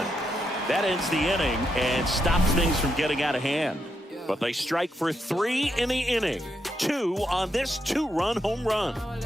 That ends the inning and stops things from getting out of hand. But they strike for 3 in the inning. 2 on this 2-run home run.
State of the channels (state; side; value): normal; both; correlation 0.81